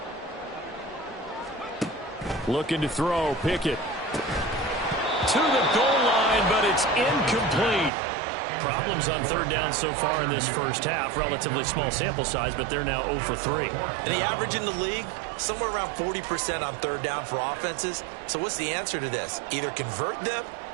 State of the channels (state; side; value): drops out; left; at 7.9 s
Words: Looking to throw, Pickett. To the goal line, but it's incomplete. Problems on third down so far in this first half. Relatively small sample size, but they're now 0 for 3. And the average in the league, somewhere around 40% on third down for offenses. So what's the answer to this? Either convert them